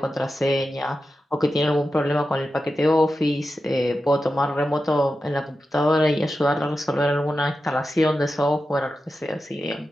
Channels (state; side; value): normal; both; correlation 0.91